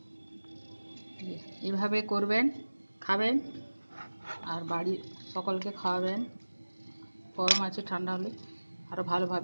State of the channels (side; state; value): both; inverted; correlation -1.00